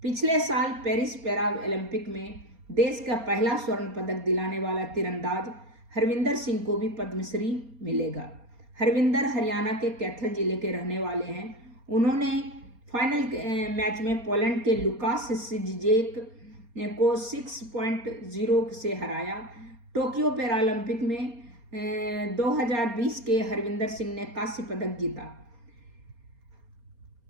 पिछले साल पेरिस पैरा ओलंपिक में देश का पहला स्वर्ण पदक दिलाने वाला तीरंदाज हरविंदर सिंह को भी पद्मश्री मिलेगा। हरविंदर हरियाणा के कैथल जिले के रहने वाले हैं। उन्होंने फाइनल मैच में पोलैंड के लुकास सिजेक को 6.0 से हराया। टोक्यो पैरालंपिक में 2020 के हरविंदर सिंह ने कांस्य पदक जीता।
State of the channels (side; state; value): left; late; 4.3 ms